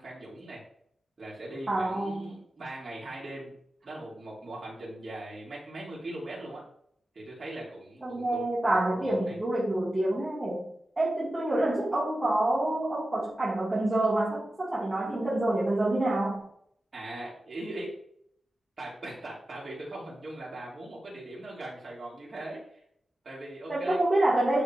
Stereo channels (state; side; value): normal; both; correlation 0.93